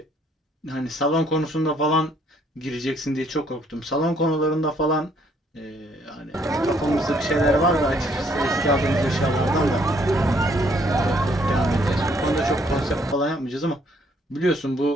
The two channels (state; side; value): normal; both; correlation 0.66